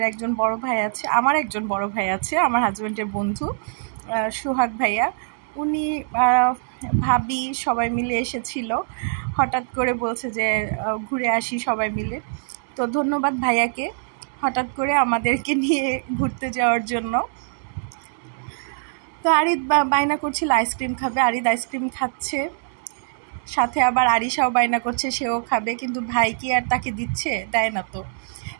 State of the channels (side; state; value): left; silent; digital silence